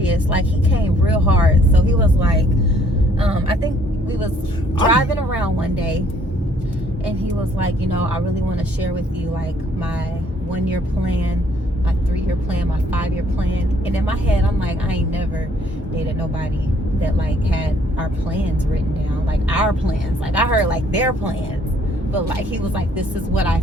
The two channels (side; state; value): both; normal; correlation 0.63